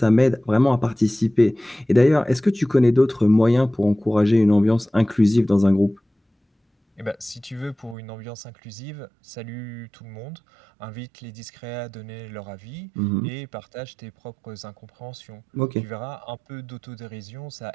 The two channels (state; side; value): drops out; left; at 8.0 s